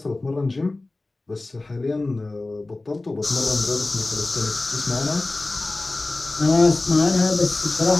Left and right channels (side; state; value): right; quieter; 3.0 dB